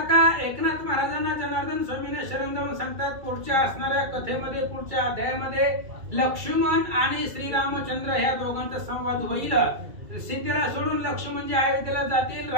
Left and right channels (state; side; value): late; left; 2.3 ms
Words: एकनाथ महाराजांना जनार्दन स्वामीने शरण जाऊन सांगतात पुढच्या असणाऱ्या कथेमध्ये पुढच्या अध्यायामध्ये लक्ष्मण आणि श्रीरामचंद्र ह्या दोघांचा संवाद होईल. सीतेला सोडून लक्ष्मण जे अयोध्येला जातील,